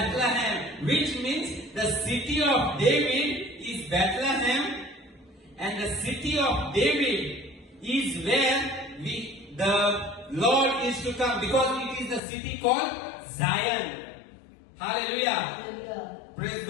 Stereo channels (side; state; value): right; drops out; at 12.2 s